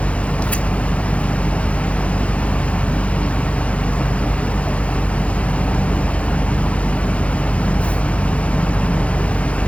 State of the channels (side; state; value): right; late; 0.063 ms